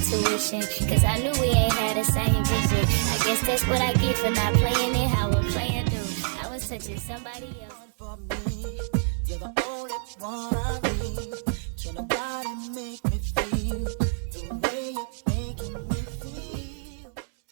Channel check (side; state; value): left; silent; digital silence